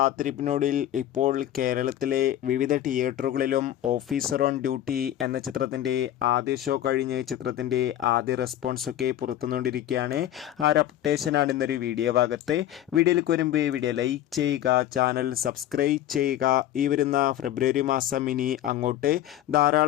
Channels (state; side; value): quieter; right; 12.2 dB